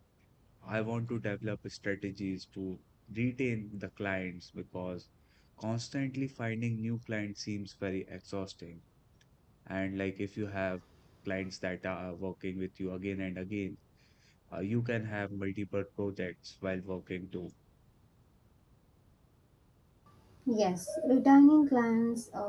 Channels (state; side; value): identical; both; correlation 1.00